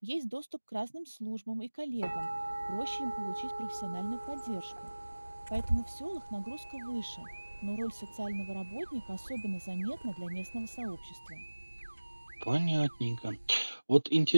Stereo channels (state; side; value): inverted; both; correlation -1.00